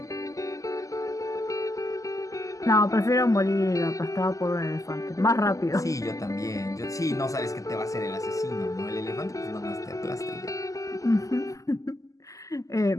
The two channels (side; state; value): right; late; 0.16 ms